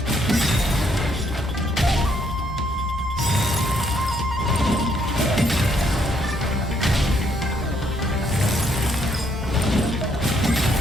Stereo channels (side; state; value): both; normal; correlation 0.71